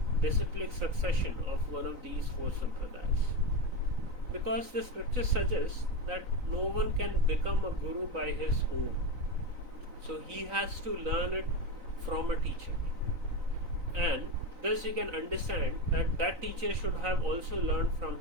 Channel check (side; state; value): left; late; 3.9 ms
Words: disciplic succession of one of these 4 sampradayas, because the scripture suggests that no one can become a guru by his own. So he has to learn it from a teacher, and thus you can understand that that teacher should have also learned from